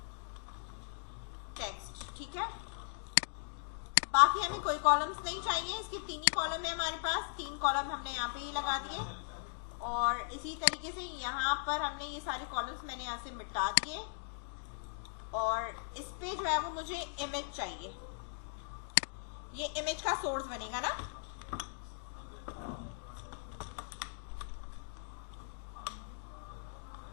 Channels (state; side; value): silent; right; digital silence